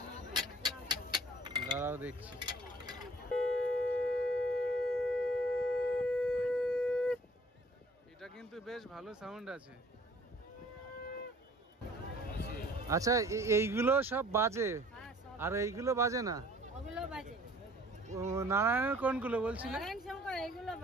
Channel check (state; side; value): normal; both; correlation 0.54